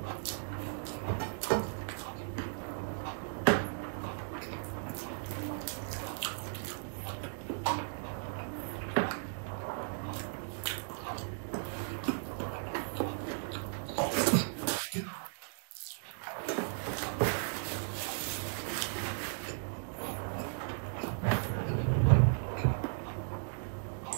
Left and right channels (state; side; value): silent; left; digital silence